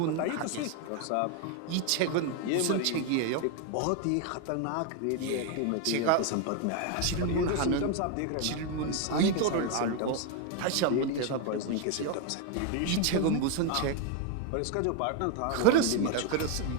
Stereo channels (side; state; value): both; different; correlation 0.01